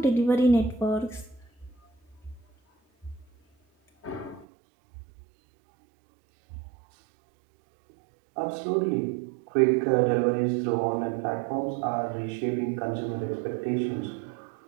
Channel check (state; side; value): drops out; left; at 4.5 s